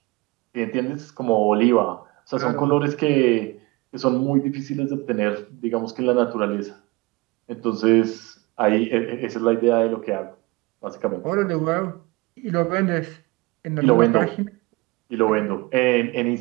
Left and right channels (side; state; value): left; quieter; 23.7 dB